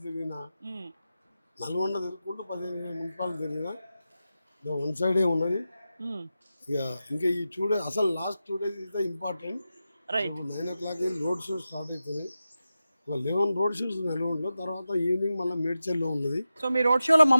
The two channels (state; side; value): inverted; both; correlation -0.92